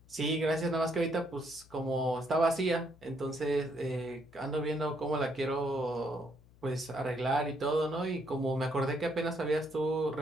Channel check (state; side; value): noise; left; hum, 26 dB below the sound